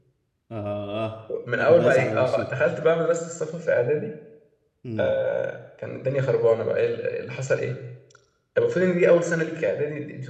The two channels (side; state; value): both; identical; correlation 1.00